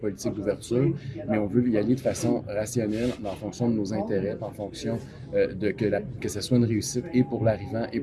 d'ouverture, mais on veut y aller de façon rationnelle, en fonction de nos intérêts, en fonction que ce soit une réussite et pour l'arrivant et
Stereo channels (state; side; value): identical; both; correlation 1.00